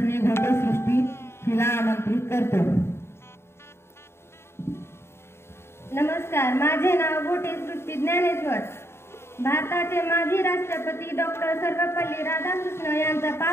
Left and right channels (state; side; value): late; right; 0.12 ms